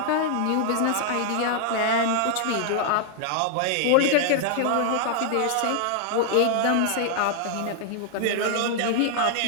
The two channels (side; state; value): both; different; correlation 0.00